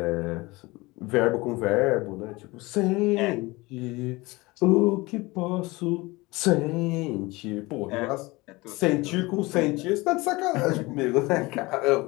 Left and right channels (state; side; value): quieter; right; 22.6 dB